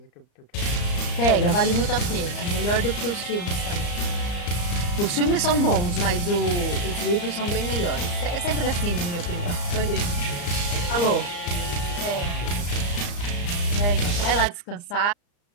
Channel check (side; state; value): right; late; 35 ms